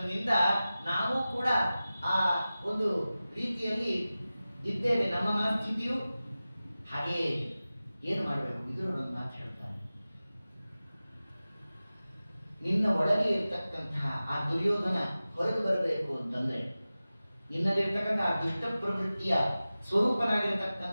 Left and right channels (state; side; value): inverted; both; correlation -0.96